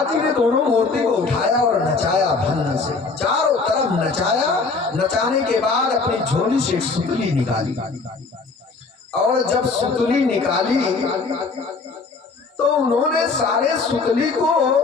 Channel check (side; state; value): right; quieter; 4.2 dB